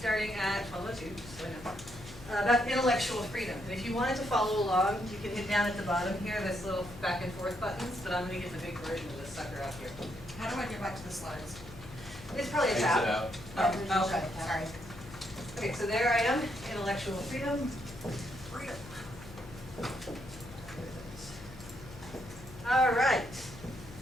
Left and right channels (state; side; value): noise; left; hum, 16 dB below the sound